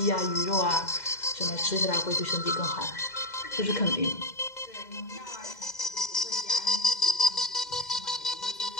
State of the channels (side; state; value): right; late; 2.0 ms